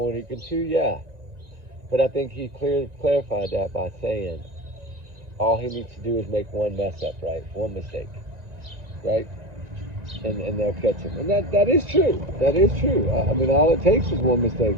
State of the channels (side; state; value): left; late; 1.9 ms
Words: than he can chew? Yeah. But I think he clarified that by saying all he needs to do is make one mess up, right? One mistake, right? And they'll catch him. And that is true. That is true. I mean, all it takes is one mistake.